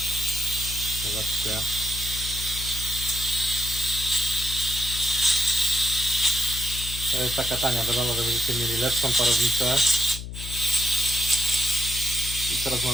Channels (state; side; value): noise; left; hum, 9 dB below the sound